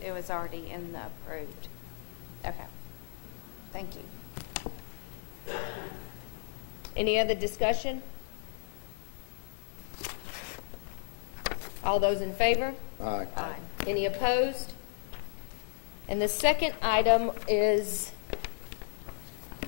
It was already in the approved. Okay. Thank you. Any other discussion? All those in favor? Aye. Aye. Any opposed? And the second item is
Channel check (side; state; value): right; silent; 55 dB below the other